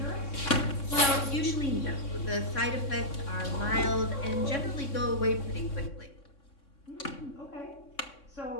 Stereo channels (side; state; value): right; late; 3.6 ms